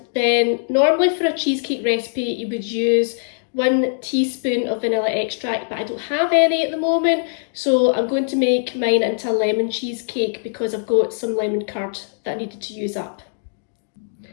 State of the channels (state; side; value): silent; right; digital silence